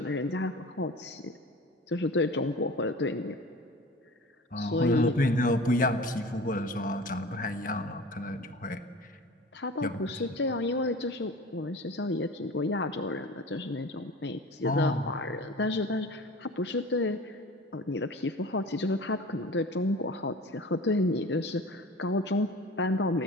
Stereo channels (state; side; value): normal; both; correlation 0.38